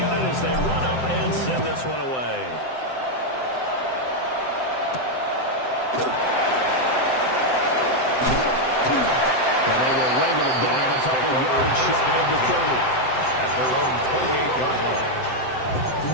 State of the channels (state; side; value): late; right; 7.8 ms